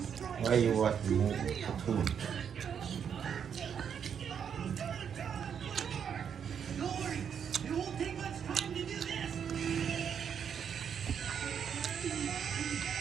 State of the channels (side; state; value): left; quieter; 7.7 dB